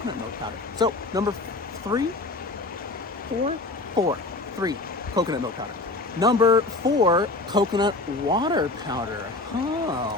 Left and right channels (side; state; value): right; quieter; 3.1 dB